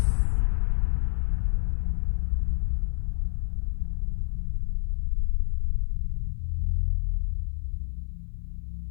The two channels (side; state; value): right; silent; 58 dB below the other